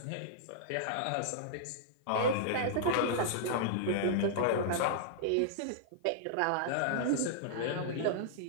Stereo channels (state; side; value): different; both; correlation -0.02